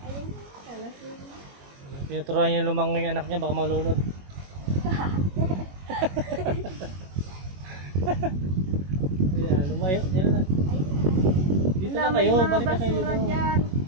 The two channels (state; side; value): late; left; 21 ms